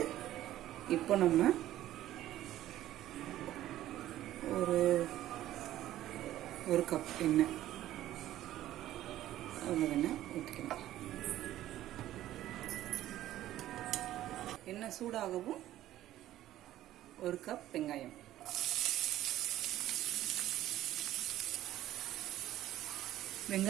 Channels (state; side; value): quieter; left; 13.7 dB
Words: இப்போ நம்ம ஒரு கப் எண்ணெய் ஊற்றிக்கணும். எண்ணெய் சூடாகவும் ஒரு கப் வெங்காயம்,